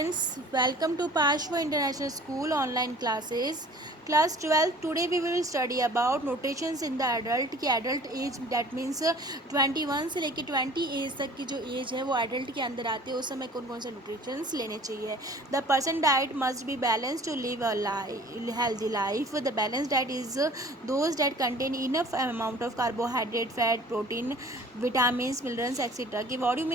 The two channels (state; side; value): normal; both; correlation 0.48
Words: welcome to Pashwa International School online classes. Class 12, today we will study about notations in the adult की adult age that means 21 से लेकर 20 as तक की जो as है वो adult के अंदर आती है, उस समय कौन कौन से notations लेने चाहिए. The person diet must be balanced to live a healthy life. The balanced diet is those that contain enough amount of carbohydrate, fat, protein, vitamins, minerals etc. कि what do you